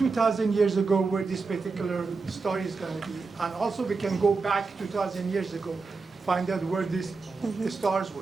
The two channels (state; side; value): quieter; left; 4.3 dB